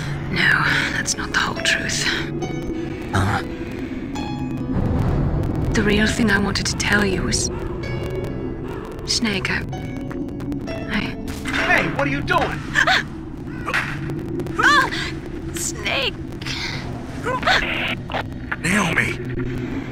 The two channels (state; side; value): identical; both; correlation 1.00